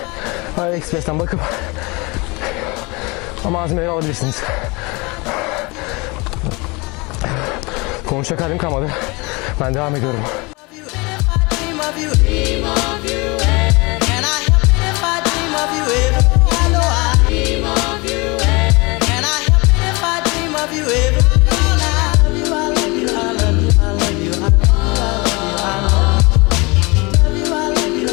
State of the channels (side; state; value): right; quieter; 26.4 dB